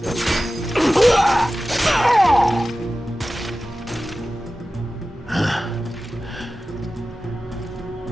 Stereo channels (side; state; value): both; normal; correlation 0.95